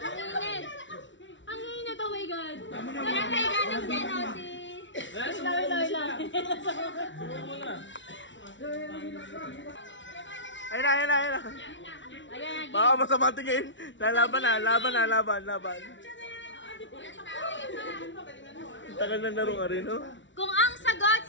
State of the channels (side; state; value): right; late; 0.55 ms